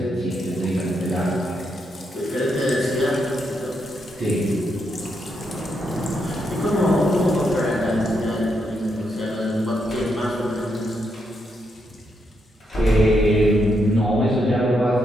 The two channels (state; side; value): normal; both; correlation 0.80